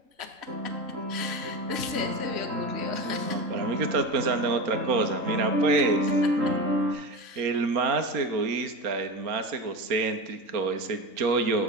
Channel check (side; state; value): left; late; 4.3 ms